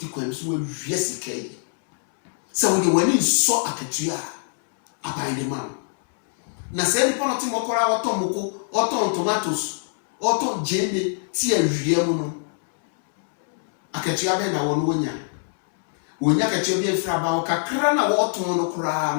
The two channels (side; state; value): right; silent; digital silence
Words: kwan so wawia sika yi sɛ wode w'ani nsɔ akatua a aban de ma na sɛ nipa no te mɔkɔra ɔtɔn moko ɔtɔn tomatoes ɔtɔn gyeene ti awia mu no akatua bɛn na wɔn wonya akatua bi afiri aba kakra na wɔtɔn no koraa